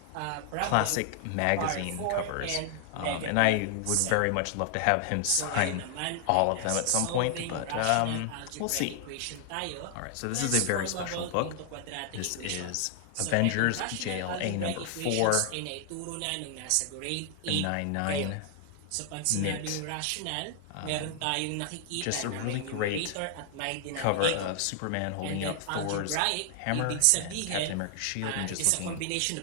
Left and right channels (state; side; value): different; both; correlation 0.00